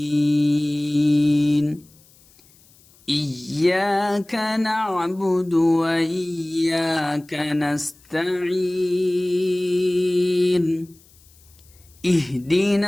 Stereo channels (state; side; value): noise; left; hiss, 29 dB below the sound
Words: إياك نعبد وإياك نستعين.